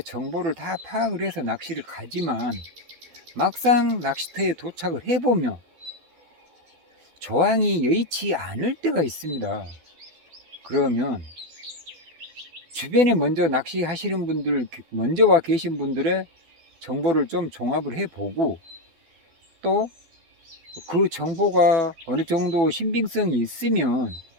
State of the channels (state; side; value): late; left; 12 ms